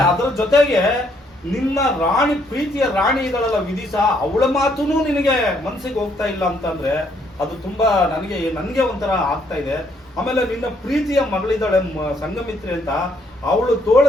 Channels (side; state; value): both; normal; correlation 0.69